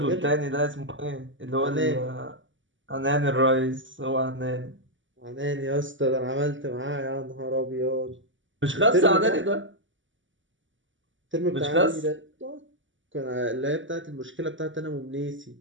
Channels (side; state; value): left; late; 0.55 ms